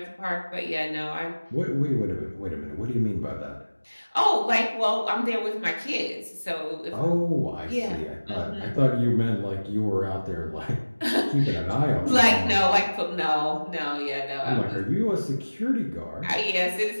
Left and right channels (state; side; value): inverted; both; correlation -1.00